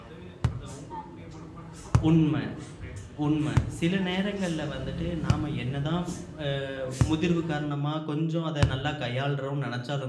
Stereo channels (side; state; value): both; identical; correlation 1.00